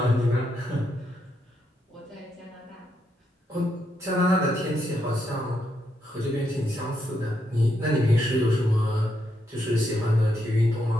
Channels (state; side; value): normal; both; correlation 0.80